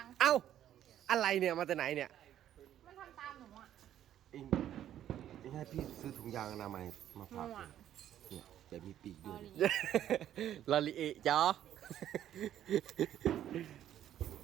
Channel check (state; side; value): quieter; left; 11.3 dB